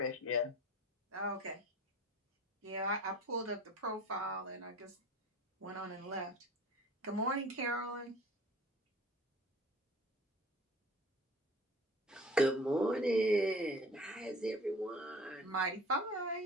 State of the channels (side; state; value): both; normal; correlation 0.44